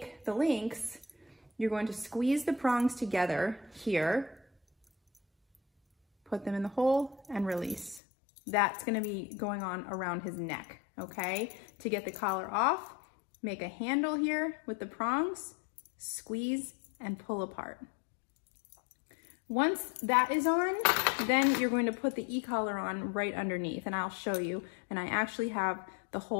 the links, you're going to squeeze the prongs together here, put them in the hole and release. That's gonna be going on around his neck, okay? To get the collar off, make a handle here with the prongs, squeeze and pull apart. Once that is on, then you're going to put the e-collar on right underneath, and I'll show you. And I actually have the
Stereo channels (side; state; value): right; drops out; at 8.0 s